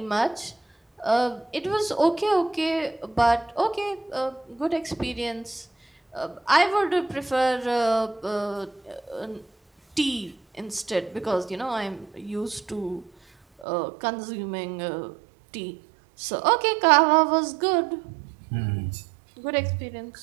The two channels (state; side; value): drops out; left; at 13.7 s